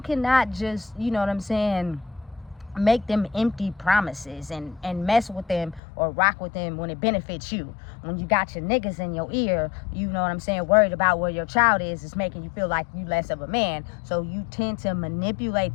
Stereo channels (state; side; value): drops out; right; at 5.8 s